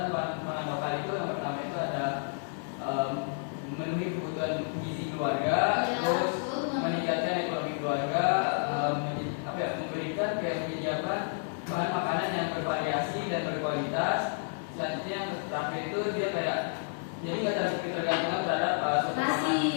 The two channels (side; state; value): right; silent; digital silence